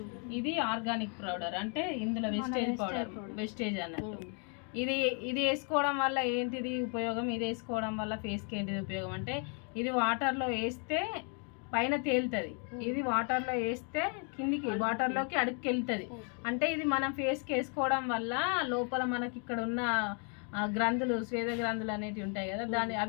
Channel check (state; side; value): quieter; right; 40.0 dB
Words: ఇది ఆర్గానిక్ పౌడర్ అంటే ఇందులో వెస్టేజ్ అన్నట్టు. ఇది వేసుకోవడం వల్ల ఏంటిది ఉపయోగం, ఇది వేసుకోవడం వల్ల ఫేస్కి ఏంటిది ఉపయోగం అంటే ఇది వాటర్లో వేస్తే పైన తేలుతుంది, ఇది వాటర్లో వేస్తే కిందికి వాటర్లోకి అడుగుకి వెళ్తుంది. అంటే ఇది మనం ఫేస్కి వేసుకోవడం వల్ల లోపల మనకి ఇక్కడ ఉన్న గ్రంథులు స్వేద గ్రంథులు అనేటివి ఉంటాయి కదా,